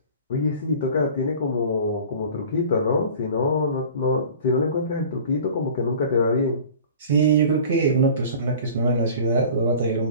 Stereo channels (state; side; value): inverted; both; correlation -0.42